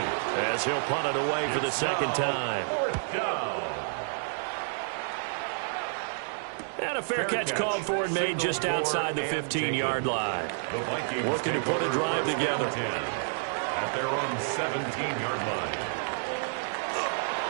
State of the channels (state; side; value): silent; left; digital silence